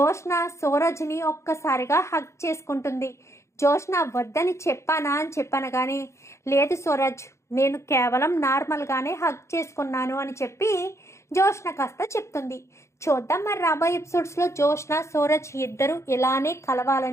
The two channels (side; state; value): right; late; 0.14 ms